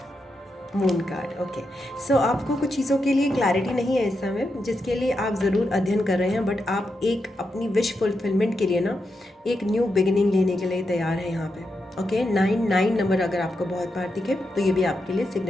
moon card, okay. So आपको कुछ चीज़ों के लिए क्लैरिटी नहीं है इस समय, जिसके लिए आप ज़रूर अध्ययन कर रहे हैं, बट आप एक अपनी विश फुलफिलमेंट के लिए ना एक न्यू बिगिनिंग लेने के लिए तैयार हैं यहाँ पे। ओके, 9 नंबर अगर आपको बहुत बार दिखे तो ये भी आपके लिए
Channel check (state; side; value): normal; both; correlation 0.85